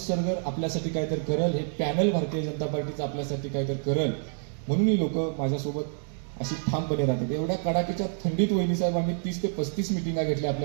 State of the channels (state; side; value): silent; left; digital silence